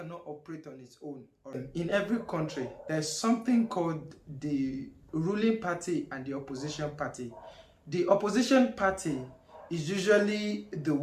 operate on its own. In every country, there's something called the ruling party and the opposition party. The opposition party is usually the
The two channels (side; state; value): both; identical; correlation 1.00